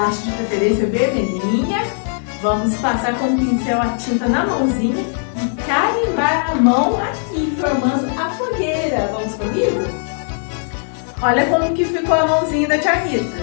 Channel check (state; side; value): silent; right; digital silence